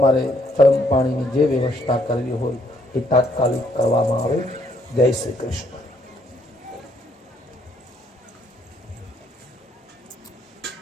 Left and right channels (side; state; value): both; normal; correlation 0.68